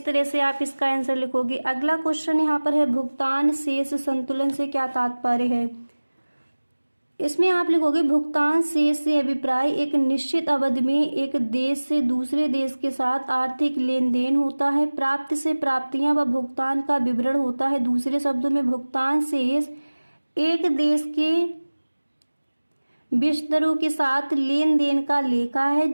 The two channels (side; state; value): both; inverted; correlation -1.00